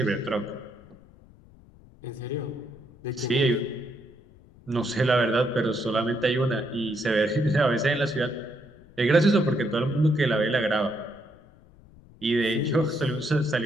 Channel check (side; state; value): left; noise; rumble, 25 dB below the sound